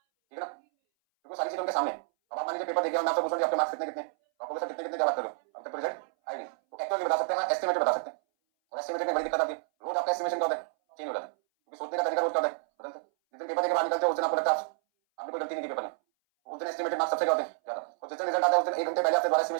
है ना, क्योंकि सारी चीजें उनके सामने। अब आप मान लीजिए पेपर देखिए और मैं आपसे पूछूं आपके मार्क्स कितने कितने, तो आपको सर कितने कितने जवाब करो, अब तक तो रिजल्ट आई नहीं, तो एक्चुअली बता सकते हैं, एस्टिमेटेड बता सकते हैं। और एस्टिमेटेड में बड़ी दिक्कत आती है, रोज आपका एस्टिमेशन क्या होता है, चेंज हो जाता है, क्योंकि सोचने का तरीका रोज क्या होता है, बदलता है। जिस दिन पेपर देके बाहर निकलते हो उस दिन आपको लगता है आपने कोई गलती नहीं की पेपर में, उस दिन एस्टिमेटेड मार्क्स सबसे क्या होते हैं ज्यादा, और जिस दिन रिजल्ट आता है उस दिन 1 घंटे पहले आपसे दोबारा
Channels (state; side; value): silent; left; 58 dB below the other